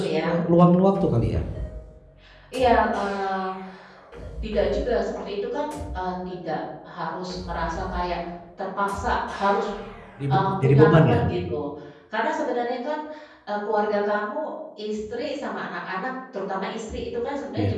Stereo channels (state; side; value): identical; both; correlation 1.00